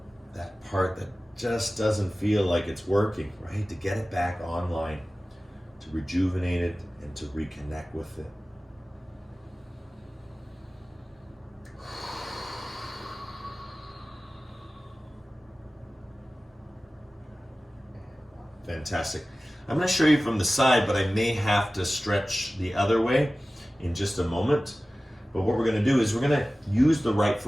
that part that just doesn't feel like it's working, right? To get it back online, to rejuvenate it and to reconnect with it. Fantastic. I'm going to show you from the side, but I may have to stretch the other way in just a moment. But what we're going to do is we're going to use the right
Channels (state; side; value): normal; both; correlation 0.97